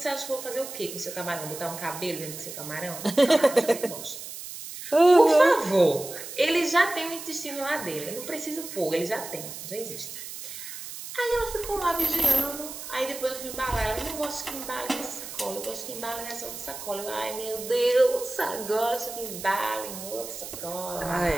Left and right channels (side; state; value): right; noise; hiss, 10 dB below the sound